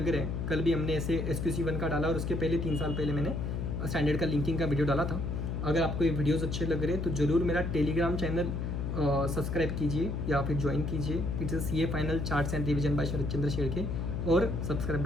रहे हैं, कल भी हमने ऐसे SQC1 का डाला और उसके पहले 3 साल पहले मैंने स्टैंडर्ड का लिंकिंग का वीडियो डाला था। अगर आपको ये वीडियोस अच्छे लग रहे हैं तो ज़रूर मेरा टेलीग्राम चैनल सब्सक्राइब कीजिए या फिर ज्वाइन कीजिए। It's CA final charts and revision by Sharad Chandra Shedke, और सब्सक्राइब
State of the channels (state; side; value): noise; left; hum, 2 dB below the sound